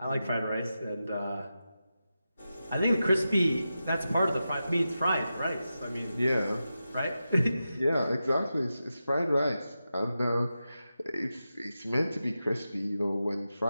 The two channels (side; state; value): both; inverted; correlation -0.91